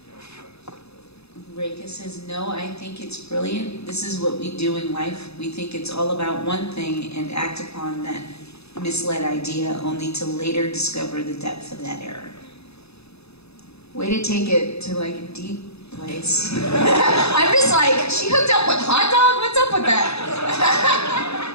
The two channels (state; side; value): late; right; 0.79 ms